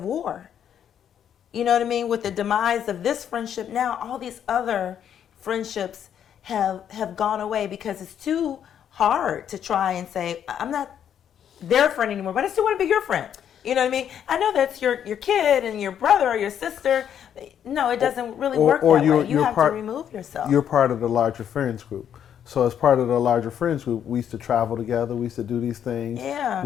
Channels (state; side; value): quieter; right; 9.2 dB